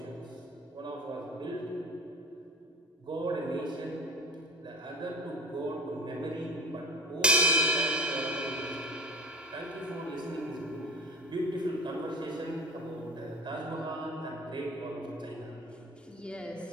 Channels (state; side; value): normal; both; correlation 0.35